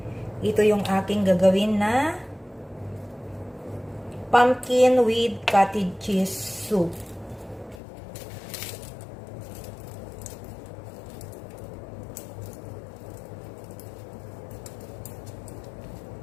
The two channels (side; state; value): right; drops out; at 7.8 s